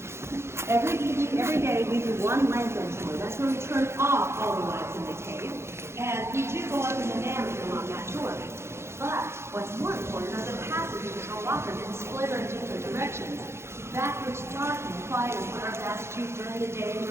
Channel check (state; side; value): late; left; 0.13 ms